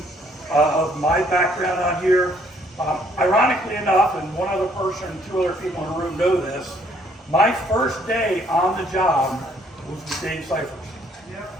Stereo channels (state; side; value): normal; both; correlation 0.65